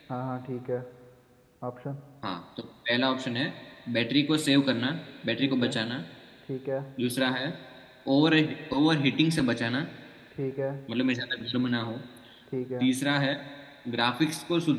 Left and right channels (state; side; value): identical; both; correlation 1.00